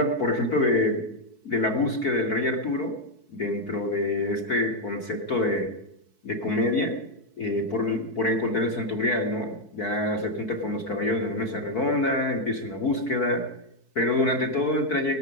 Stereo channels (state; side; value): late; right; 4.6 ms